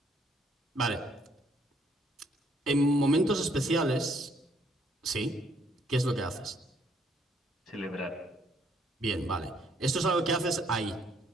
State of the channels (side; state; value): both; normal; correlation 0.67